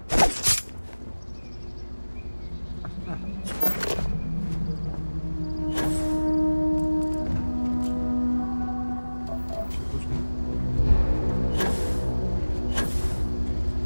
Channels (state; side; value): inverted; both; correlation -1.00